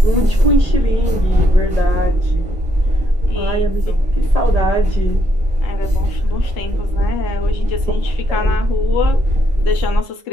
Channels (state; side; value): normal; both; correlation 0.75